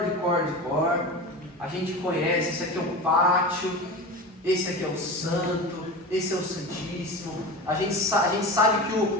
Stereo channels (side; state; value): both; normal; correlation 0.28